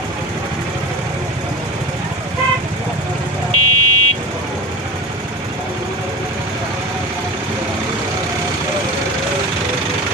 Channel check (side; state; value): both; normal; correlation 0.31